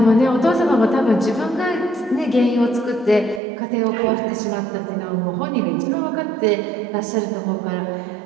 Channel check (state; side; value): drops out; left; at 3.4 s